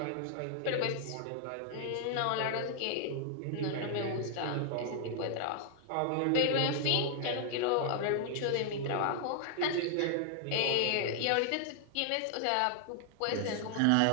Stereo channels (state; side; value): different; both; correlation 0.00